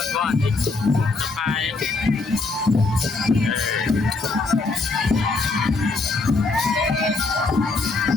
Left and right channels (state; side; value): quieter; right; 3.7 dB